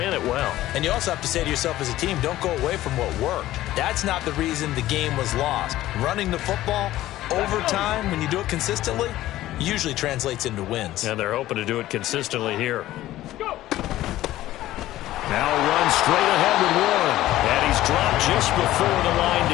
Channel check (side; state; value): right; quieter; 15.1 dB